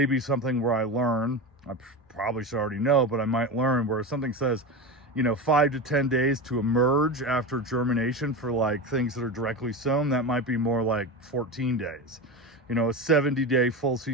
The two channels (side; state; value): both; normal; correlation 0.22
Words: something where I learn, I probably should already know, but I might learn where something says you know, 5 to 10 days to emerge after germination for like things that are directly sown. That might be more like 14 days. You know, a 70-day full